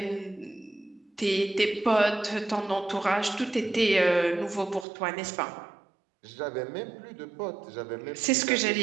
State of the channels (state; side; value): drops out; left; at 4.9 s